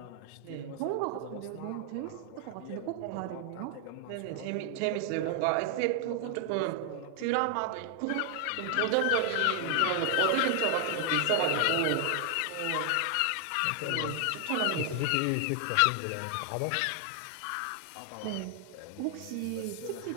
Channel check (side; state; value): both; different; correlation 0.00